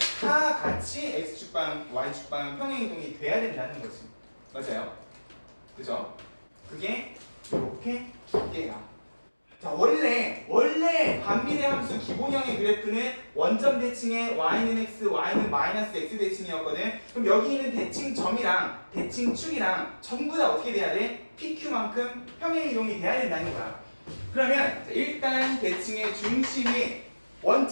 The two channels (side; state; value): both; inverted; correlation -1.00